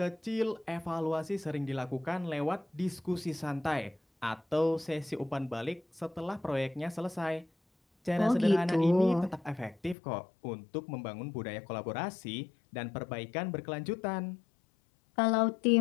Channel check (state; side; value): drops out; right; at 10.0 s